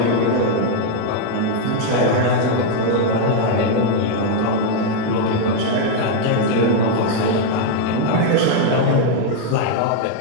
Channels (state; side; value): different; both; correlation 0.00